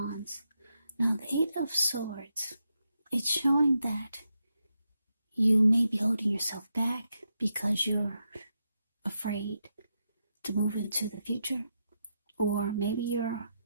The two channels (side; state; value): both; inverted; correlation -0.84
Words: Now the 8 of Swords, it's showing that you may be holding yourself back because you're afraid to move into the future. Or maybe you're